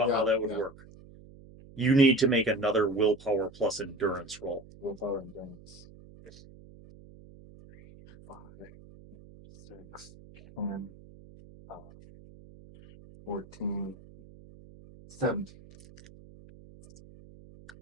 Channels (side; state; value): right; noise; hum, 21 dB below the sound